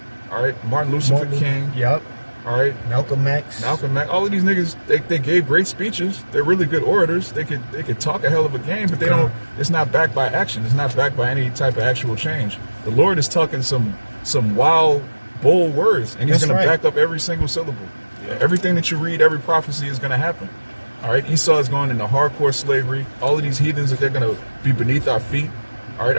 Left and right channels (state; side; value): inverted; both; correlation -1.00